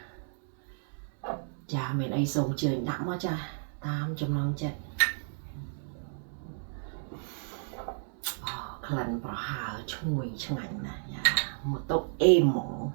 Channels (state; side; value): silent; left; digital silence